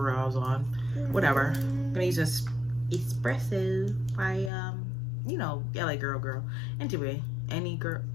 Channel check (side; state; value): right; drops out; at 4.5 s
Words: I was on. Whatever. I'm gonna use this espresso by you know, LA girl. Anyway,